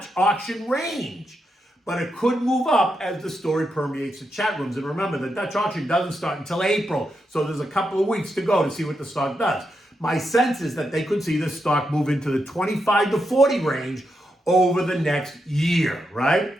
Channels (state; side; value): normal; both; correlation 0.84